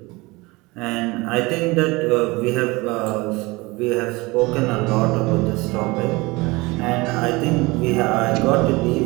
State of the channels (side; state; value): left; quieter; 23.3 dB